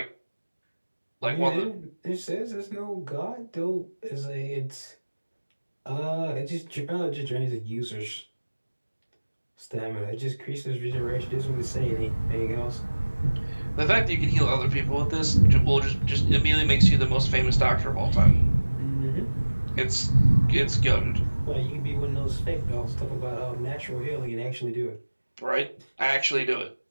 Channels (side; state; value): both; inverted; correlation -1.00